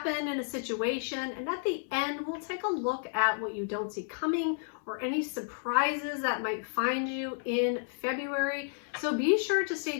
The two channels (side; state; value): right; silent; 57 dB below the other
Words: in a situation, and at the end we'll take a look at what you don't see coming or any surprises that might find you in February. So be sure to